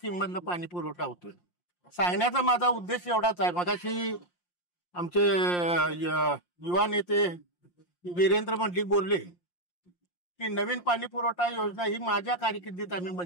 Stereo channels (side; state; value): right; late; 5.7 ms